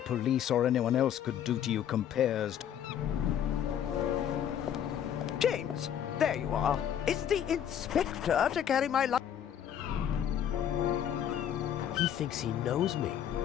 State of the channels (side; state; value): right; quieter; 9.6 dB